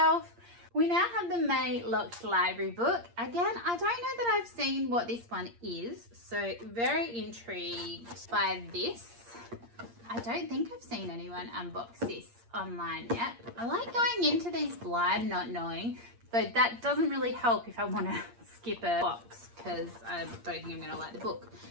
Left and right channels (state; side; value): late; left; 8.6 ms